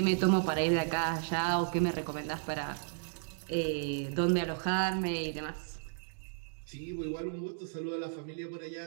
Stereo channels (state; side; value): silent; left; digital silence